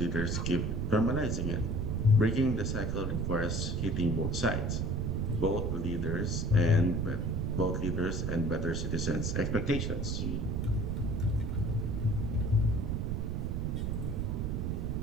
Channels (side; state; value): right; noise; rumble, 2 dB below the sound